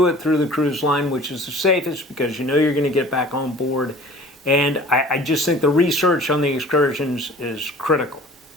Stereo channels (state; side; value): normal; both; correlation 0.46